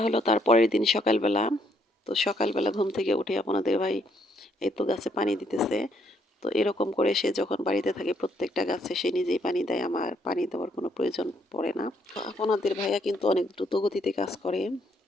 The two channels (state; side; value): normal; both; correlation 0.71